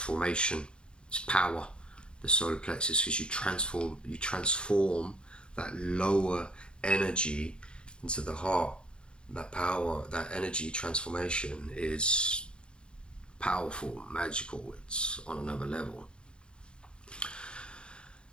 It's power, the solar plexus, because you transform that lower energy into the heart. that power, that energy transformation is powerful, magical. It's on another level.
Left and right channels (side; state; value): right; late; 0.053 ms